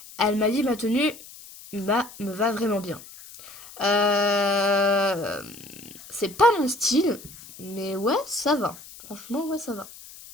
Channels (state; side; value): noise; left; hiss, 18 dB below the sound